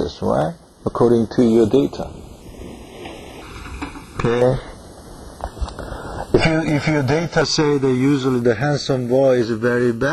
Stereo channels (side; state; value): both; identical; correlation 1.00